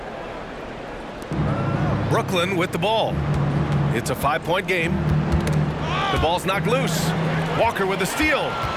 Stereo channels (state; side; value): identical; both; correlation 1.00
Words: Brooklyn with the ball. It's a 5-point game. The ball's knocked loose. Walker with the steal.